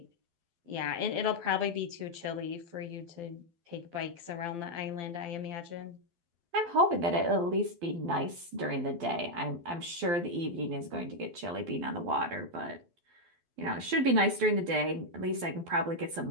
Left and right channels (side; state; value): left; late; 12 ms